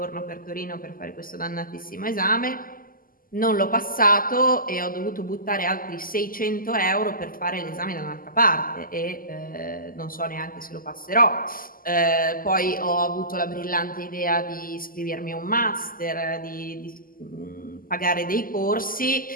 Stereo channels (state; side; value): late; right; 0.41 ms